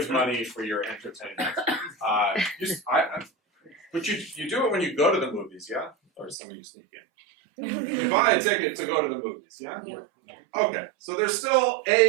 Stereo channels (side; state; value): left; drops out; at 6.4 s